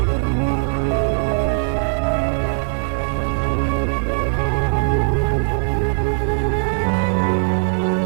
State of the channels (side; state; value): left; silent; 66 dB below the other